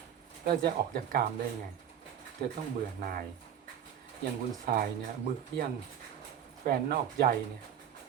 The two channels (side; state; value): left; quieter; 9.4 dB